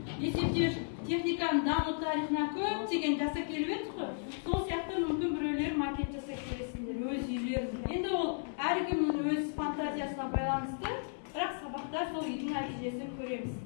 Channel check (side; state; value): right; silent; 55 dB below the other